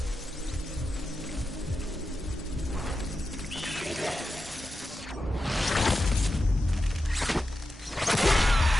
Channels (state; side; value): normal; both; correlation 0.90